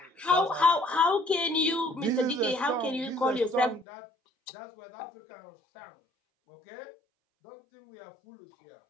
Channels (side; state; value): right; drops out; at 3.9 s